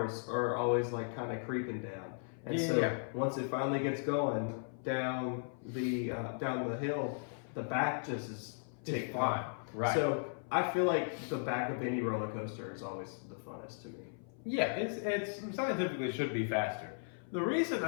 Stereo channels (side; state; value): right; silent; 53 dB below the other